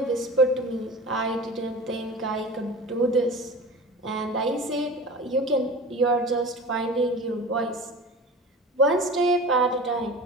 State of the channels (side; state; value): both; normal; correlation 0.35